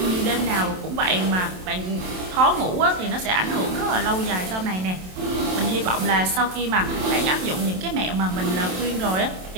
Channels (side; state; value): left; late; 27 ms